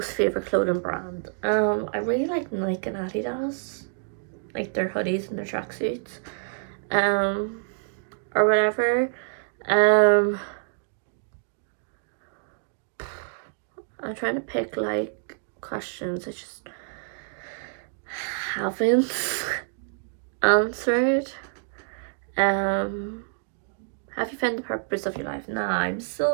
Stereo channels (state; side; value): silent; left; digital silence